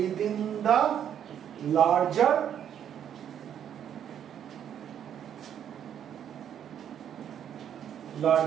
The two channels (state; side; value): quieter; left; 9.4 dB